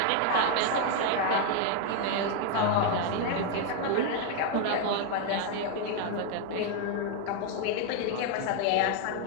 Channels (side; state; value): both; different; correlation 0.01